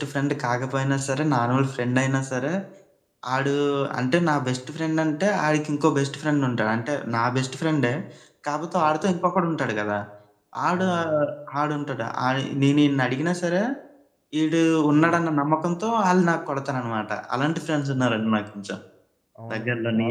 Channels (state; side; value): identical; both; correlation 1.00